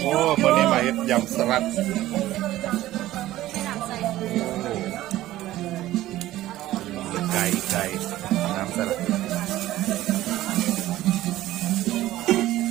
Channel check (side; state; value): left; quieter; 15.2 dB